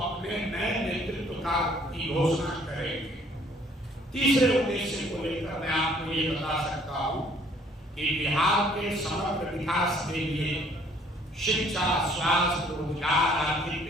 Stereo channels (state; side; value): normal; both; correlation 0.60